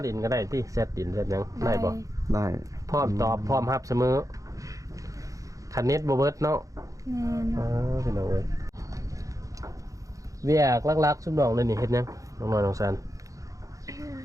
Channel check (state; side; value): late; left; 0.16 ms